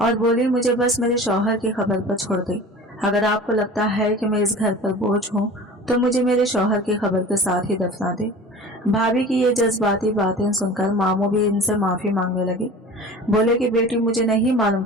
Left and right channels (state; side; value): normal; both; correlation 0.39